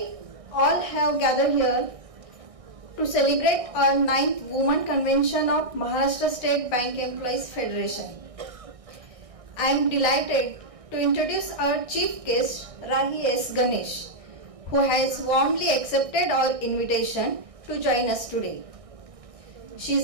all have gathered here to celebrate our 9th Women Convention of Maharashtra State Bank Employees Federation. I am delighted to introduce our chief guest, Rahi S. Ganesh, who has warmly accepted our invitation to join us today. She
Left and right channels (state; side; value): late; left; 1.6 ms